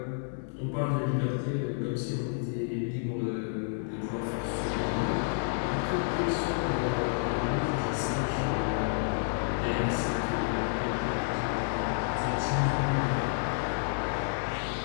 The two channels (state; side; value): silent; right; digital silence